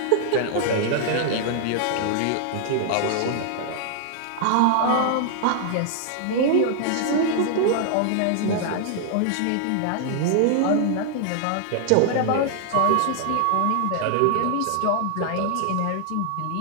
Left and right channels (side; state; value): both; different; correlation -0.01